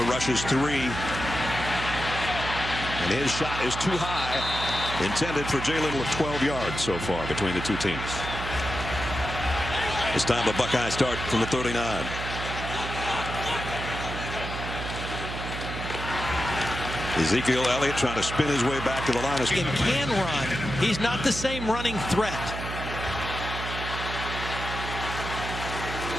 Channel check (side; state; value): right; noise; hum, 6 dB below the sound